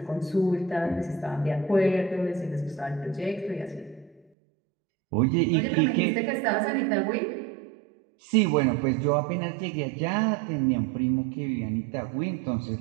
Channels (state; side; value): drops out; left; at 4.2 s